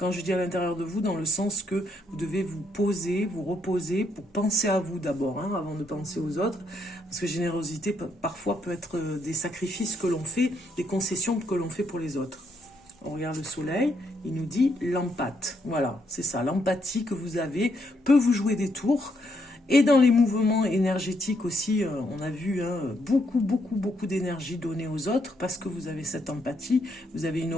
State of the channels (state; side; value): normal; both; correlation 0.75